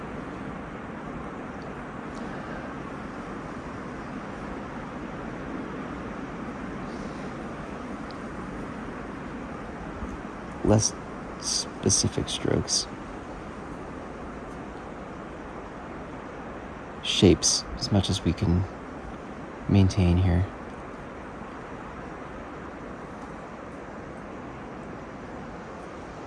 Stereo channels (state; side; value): identical; both; correlation 1.00